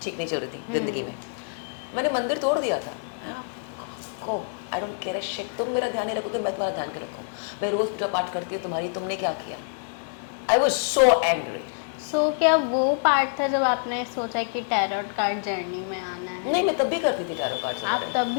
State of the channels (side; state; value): right; silent; digital silence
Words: ठीक नहीं चल रही थी ज़िंदगी में, मैंने मंदिर तोड़ दिया था। को I don't care a shit, तुम मेरा ध्यान नहीं रखोगे, मैं तुम्हारा ध्यान क्यों रखूँ? मैं रोज़ पूजा पाठ करती हूँ तुम्हारी, तुमने क्या किया? I was so angry. सो क्या वो पार्ट था जब आपने सोचा कि टैरोट कार्ड जर्नी में आना है? नहीं, मैं तब भी करती थी टैरो कार्ड्स आप वगैरह, तब